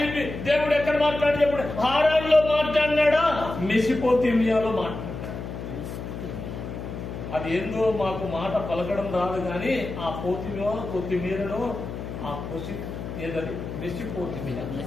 చెప్పి దేవుడు ఎక్కడ మాట్లాడి చెప్పాడు? హారాన్లో మాట్లాడినాడా, మెసిపోతిమియాలో మాట్లాడాడు. అది ఏందో మాకు మాట పలకడం రాదు కానీ ఆ పోతిమియా కొత్తిమీరను ఆ పొసి ఏదది మెసిపోతిమియా,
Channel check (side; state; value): left; noise; hum, 8 dB below the sound